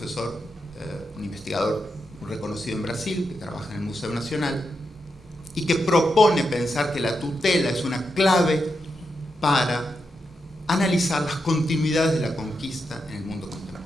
un investigador reconocido en Brasil, que trabaja en el Museo Nacional, y que propone pensar que la tutela es una clave para analizar las continuidades de la conquista en el mundo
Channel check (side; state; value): both; normal; correlation 0.85